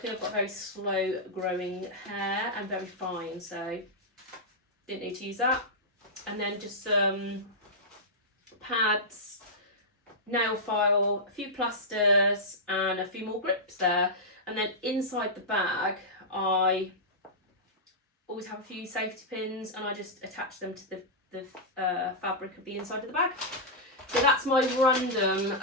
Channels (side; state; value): both; normal; correlation -0.11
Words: I've got very slow growing hair and very fine, so didn't need to use that. And then just some pads, nail file, a few plasters, and a few more grips there. And then inside the bag, I always have a few safety pins, and I just attach them to the fabric of the inside of the bag. So that's my random